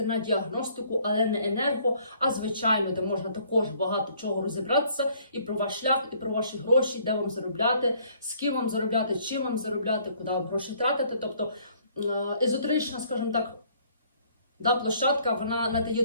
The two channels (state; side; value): inverted; both; correlation -0.62